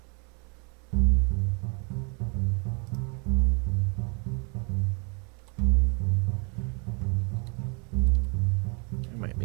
I might be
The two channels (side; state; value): left; quieter; 34.7 dB